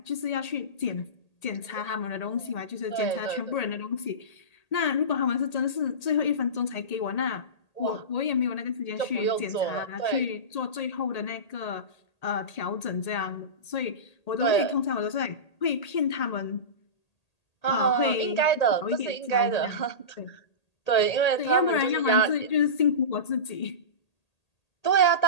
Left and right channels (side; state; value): right; late; 1.8 ms